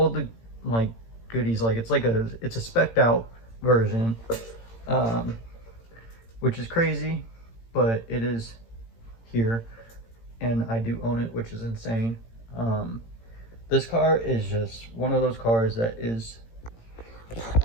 the like goodies. Like it's a spec'd out version, which is crazy, but it is here, and I do own it, which is insane. This car is just one of those cars that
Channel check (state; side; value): late; right; 18 ms